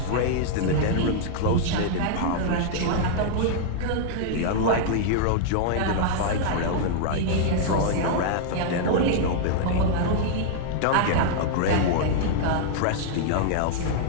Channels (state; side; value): different; both; correlation -0.01